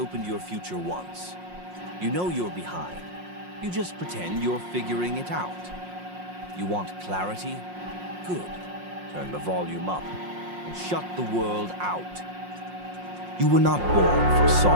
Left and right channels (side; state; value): left; late; 5.6 ms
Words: your future once. You know you're behind. You just pretend you're figuring it out. You want clarity? Good. Turn the volume up and shut the world out. You were not born for